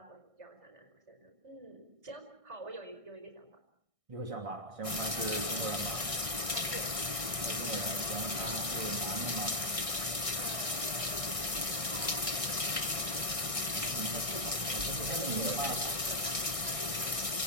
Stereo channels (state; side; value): late; left; 1.6 ms